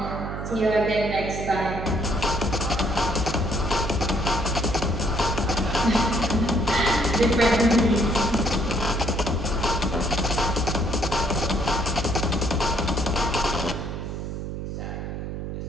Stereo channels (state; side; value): noise; right; hum, 6 dB below the sound